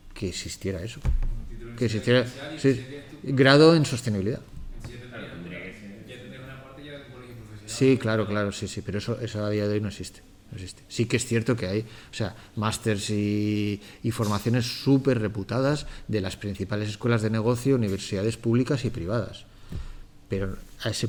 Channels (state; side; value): identical; both; correlation 1.00